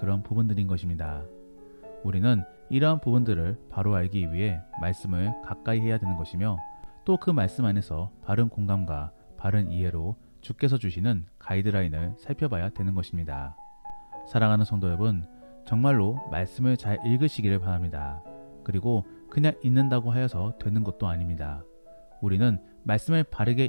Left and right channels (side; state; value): both; inverted; correlation -1.00